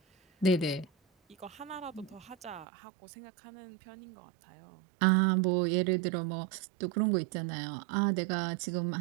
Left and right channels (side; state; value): left; drops out; at 2.7 s